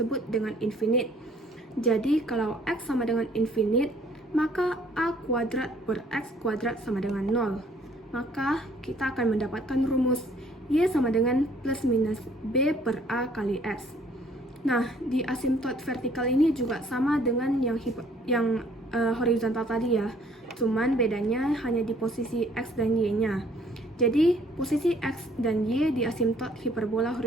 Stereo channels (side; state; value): both; normal; correlation 0.60